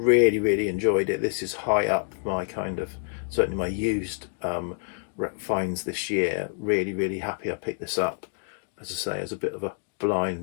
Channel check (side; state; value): right; silent; digital silence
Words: enjoyed it. This is high up my kind of, certainly my used finds this year. Really happy I picked this up, as I say, as a bit of a